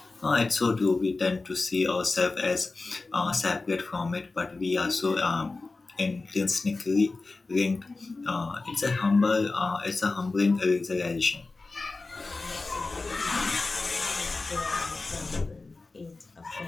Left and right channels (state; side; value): quieter; right; 3.6 dB